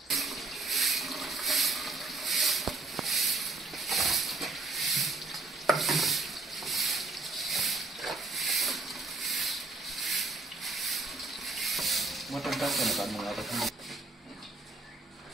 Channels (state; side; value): quieter; left; 3.6 dB